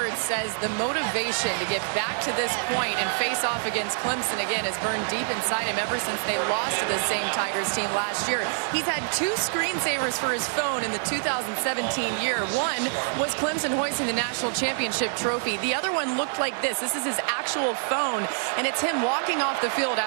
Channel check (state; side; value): silent; left; digital silence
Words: says the motivation to get back to this point and face off against Clemson again has burned deep inside him ever since they lost to the same Tigers team last year. He's had 2 screensavers for his phone in the 2017 year. One was Clemson hoisting the national championship trophy. The other one looked like this. This is his actual phone, and it's him walking off the field